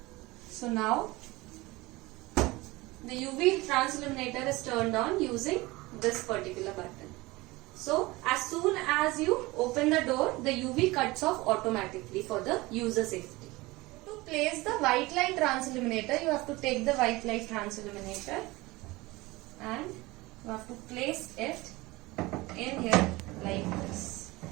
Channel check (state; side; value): quieter; left; 21.4 dB